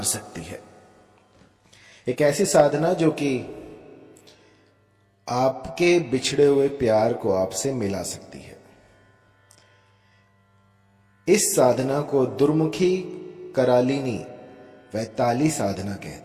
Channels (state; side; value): identical; both; correlation 1.00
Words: सकती है। एक ऐसी साधना जो कि आपके बिछड़े हुए प्यार को आपसे मिला सकती है। इस साधना को दुर्मुखी करालिनी वैताली साधना